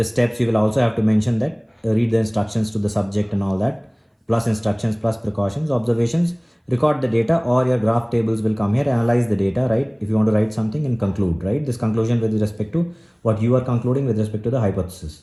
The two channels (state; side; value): identical; both; correlation 1.00